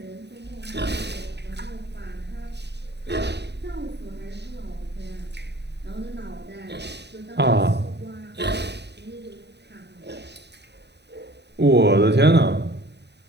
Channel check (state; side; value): late; left; 0.50 ms